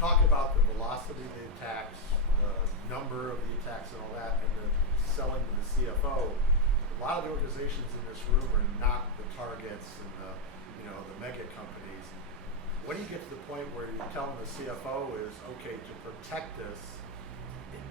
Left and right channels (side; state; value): both; normal; correlation 0.01